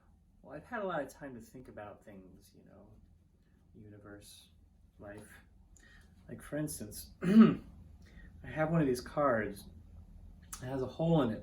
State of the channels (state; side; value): identical; both; correlation 1.00